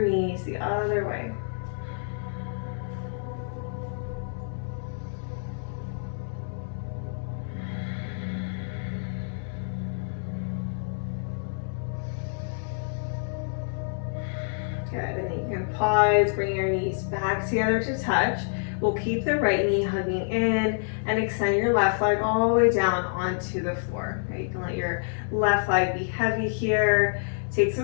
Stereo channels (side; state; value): right; silent; 60 dB below the other